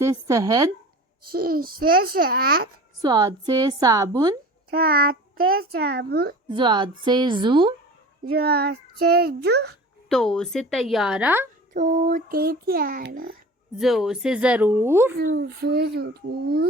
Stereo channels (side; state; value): both; normal; correlation 0.39